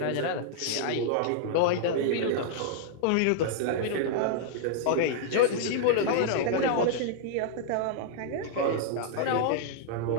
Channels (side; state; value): both; different; correlation -0.01